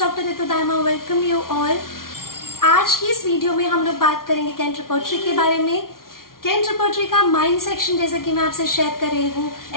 Ritu Dharma. Welcome you all. आज की इस video में हम लोग बात करेंगे कैंट रिपोर्टरी के बारे में। कैंट रिपोर्टरी का माइंड सेक्शन जैसे कि मैं आपसे शेयर कर रही हूँ,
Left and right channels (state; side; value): late; right; 0.92 ms